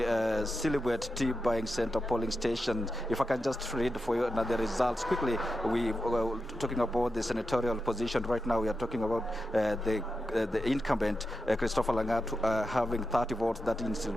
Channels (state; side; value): normal; both; correlation 0.89